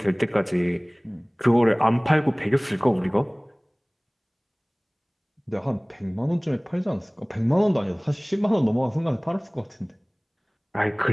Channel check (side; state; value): both; identical; correlation 1.00